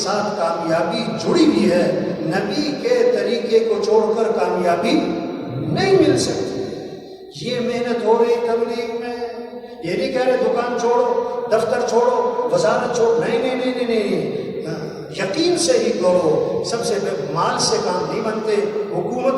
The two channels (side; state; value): both; identical; correlation 1.00